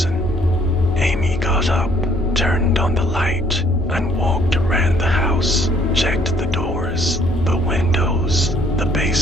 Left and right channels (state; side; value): normal; both; correlation 0.63